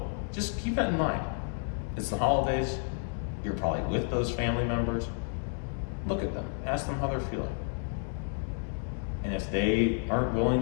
just keep that in mind. It's the holidays. You're probably with those family members. Look at them. Ask them how they're feeling. And if they aren't willing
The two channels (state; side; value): silent; right; 57 dB below the other